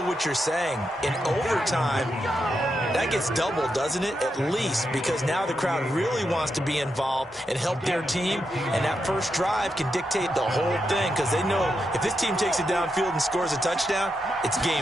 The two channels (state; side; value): normal; both; correlation 0.85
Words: what you're saying. In overtime, that gets doubled, doesn't it? At least, because now the crowd really wants to be involved and help their team, and that first drive can dictate the whole thing, because they know if this team takes it downfield and scores a touchdown, it's